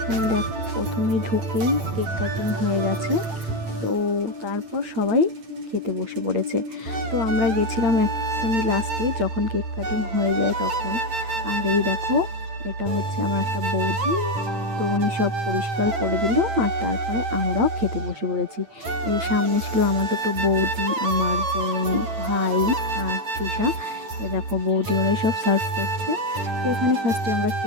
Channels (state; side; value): late; left; 8.9 ms